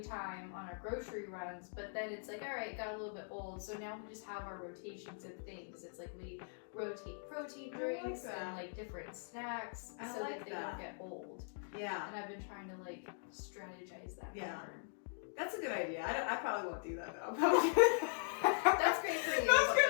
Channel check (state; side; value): silent; right; digital silence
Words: time on our grocery runs, but then it's like, all right, it got a little bit old, so now we just have our rotations of things. It's like we rotate protein drinks and like different snacks so that they don't get old. Yeah. And I've been trying to like strategize that better. That's a good idea. I probably won't do that though. That's great for you. That's